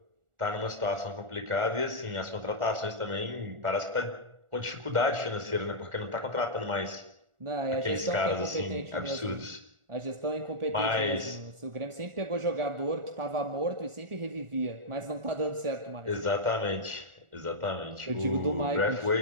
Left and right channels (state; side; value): late; left; 1.4 ms